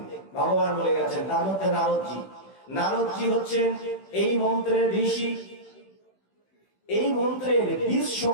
ভগবান বলে গেছেন, তার মধ্যে নারদজি। নারদজি হচ্ছেন এই মন্ত্রের ঋষি। এই মন্ত্রের বীজ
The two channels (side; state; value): right; late; 16 ms